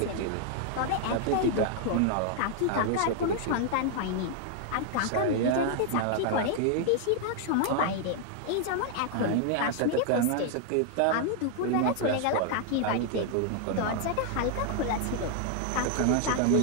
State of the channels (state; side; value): different; both; correlation 0.00